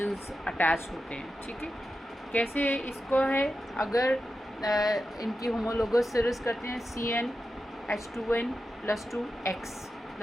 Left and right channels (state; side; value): normal; both; correlation 0.90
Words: अटैच होते हैं। ठीक है, कैसे इसको है, अगर इनकी होमोलोगस सीरीज करते हैं CnH2n +2x,